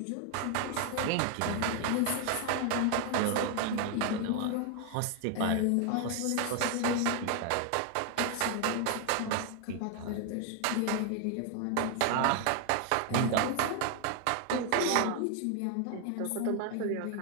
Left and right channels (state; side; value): different; both; correlation 0.00